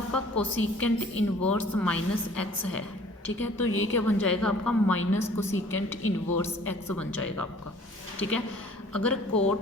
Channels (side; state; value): both; normal; correlation 0.52